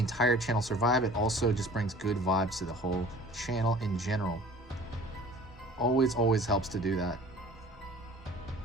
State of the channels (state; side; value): normal; both; correlation 0.45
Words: channel survive. It also just brings good vibes to the whole channel in general. Always helps to do that.